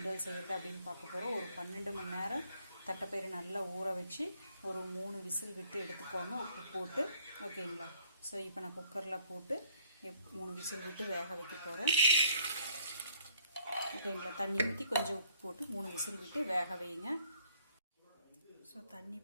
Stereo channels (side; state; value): both; inverted; correlation -0.62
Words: செய்கிறது அப்படின்னு பார்க்க போகிறோம். ஒரு 12 மணி நேரம் தட்டைப்பயிறு நல்லா ஊற வச்சு ஒரு 3 விசில் விட்டு எடுத்துக்கோங்க, உப்பு போட்டு. ஓகேங்களா? ஸோ இப்போ நான் குக்கரில் போட்டு 3 விசில் விட்டு வேக வைக்க போகிறேன். ஓகேங்களா? தண்ணி ஊற்றி கொஞ்சம் உப்பு போட்டு 3 விசில் விட்டு வேக வைங்க. ஸோ தண்ணி